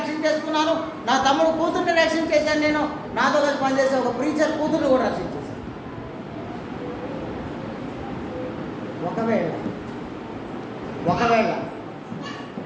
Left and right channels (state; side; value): identical; both; correlation 1.00